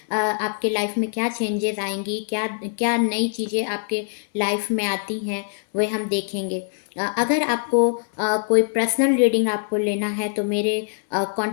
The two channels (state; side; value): silent; right; 63 dB below the other